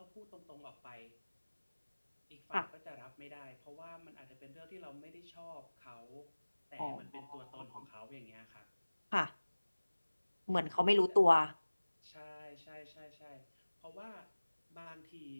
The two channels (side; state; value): both; inverted; correlation -1.00